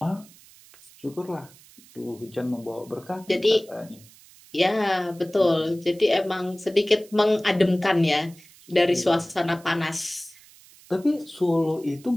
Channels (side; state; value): right; noise; hiss, 24 dB below the sound